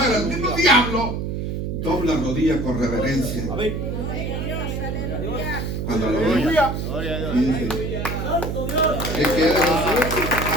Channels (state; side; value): noise; right; hum, 3 dB below the sound